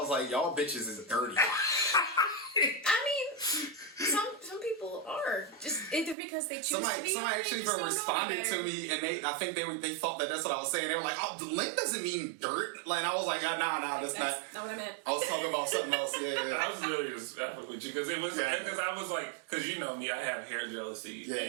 like, y'all bitches is dirty. I mean, some people are just either because they choose to be. Somebody or actually they just don't responded know to me, and I think they thought that that's what I was saying. They were like, "Oh, the lint doesn't mean dirt." Like I was like, "Nah, that's not." not what I meant. I was talking about something else. Yeah. I was really just effing with you because it was because I was like, because you know me, I have hair jealousy. Yeah,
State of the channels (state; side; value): drops out; left; at 6.2 s